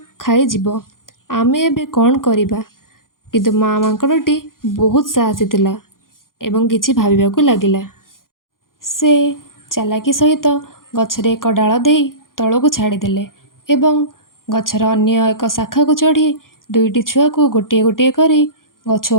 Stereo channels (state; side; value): late; right; 0.90 ms